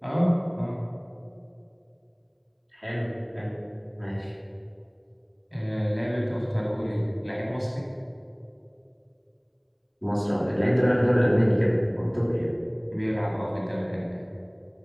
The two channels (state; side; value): identical; both; correlation 1.00